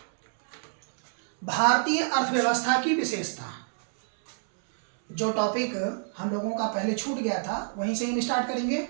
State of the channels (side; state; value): left; silent; 60 dB below the other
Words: भारतीय अर्थव्यवस्था की विशेषता। जो टॉपिक हम लोगों का पहले छूट गया था वहीं से हम स्टार्ट करेंगे।